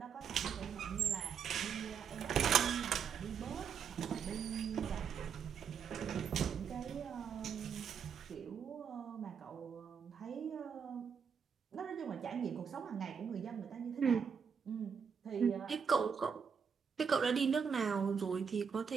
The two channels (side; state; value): left; quieter; 6.8 dB